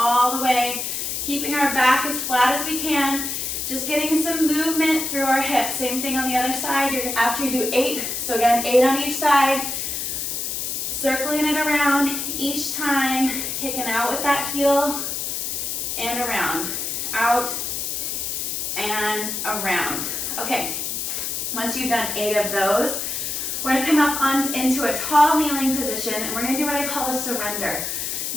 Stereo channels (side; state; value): left; noise; hiss, 3 dB below the sound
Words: the way, keeping our back as flat as we can, just getting some movement through our hips. Same thing on the other side. After you do 8, so again, 8 on each side, circling it around each time, kicking out with that heel and around, out and around. Okay, once you've done 8 of those, we're gonna come up into a tall kneeling position, and we're gonna do what I call a surrender.